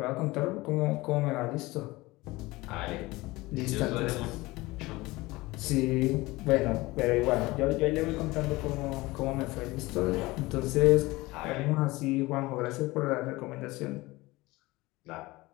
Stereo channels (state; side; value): quieter; right; 20.8 dB